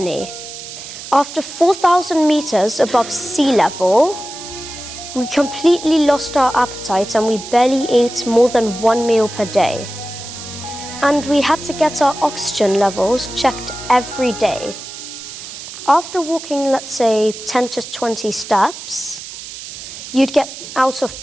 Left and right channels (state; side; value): noise; right; hiss, 12 dB below the sound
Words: After 4,000 meters above sea level, we completely lost our appetite and we barely ate more than 1 meal per day. And we had to get our oxygen levels checked every day. After walking, let's say, 10 to 20 steps, you'd get out